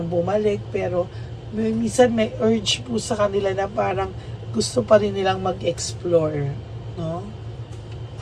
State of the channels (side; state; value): both; identical; correlation 1.00